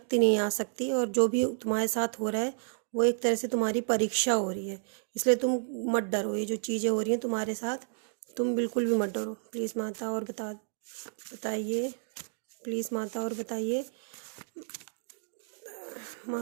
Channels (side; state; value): left; silent; digital silence